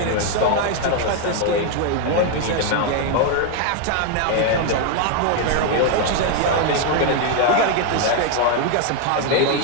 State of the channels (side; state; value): both; different; correlation 0.01